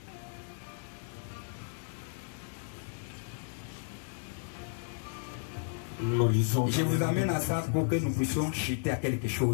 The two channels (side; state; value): right; silent; digital silence